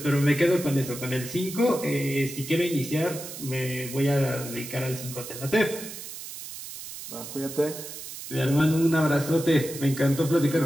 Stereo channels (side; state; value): right; noise; hiss, 11 dB below the sound